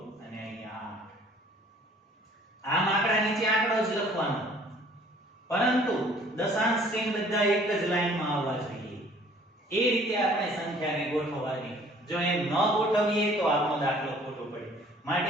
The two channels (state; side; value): normal; both; correlation 0.55